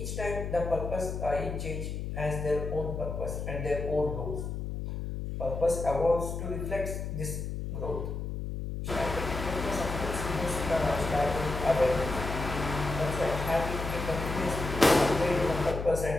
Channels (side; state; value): left; noise; hum, 4 dB below the sound